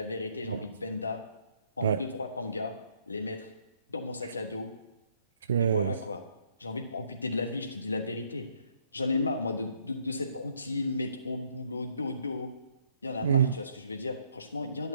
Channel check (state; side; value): inverted; both; correlation -0.69